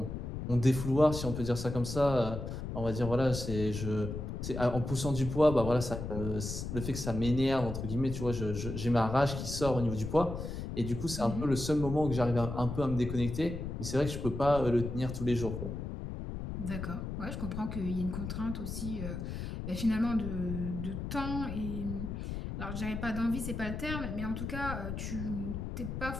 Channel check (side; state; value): left; noise; rumble, 5 dB below the sound